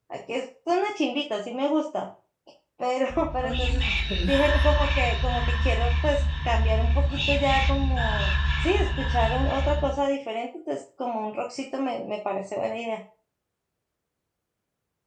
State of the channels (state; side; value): identical; both; correlation 1.00